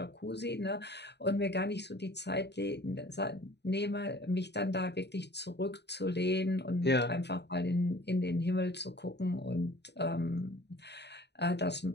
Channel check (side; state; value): right; late; 0.50 ms